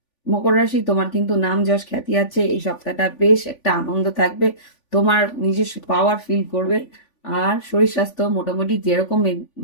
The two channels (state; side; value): late; right; 3.5 ms